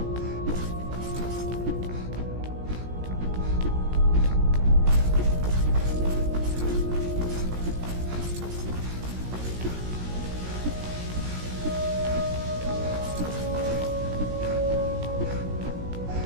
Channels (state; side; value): late; left; 17 ms